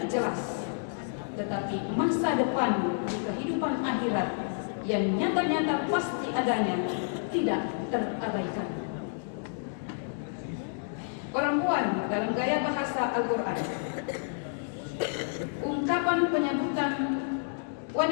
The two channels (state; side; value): silent; right; digital silence